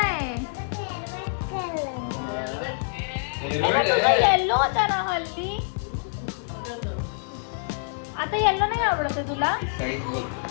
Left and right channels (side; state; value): right; silent; digital silence